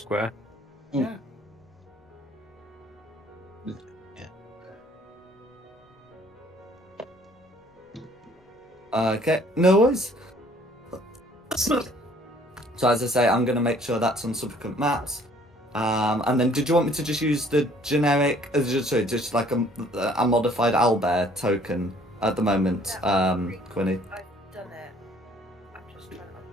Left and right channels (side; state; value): both; normal; correlation 0.58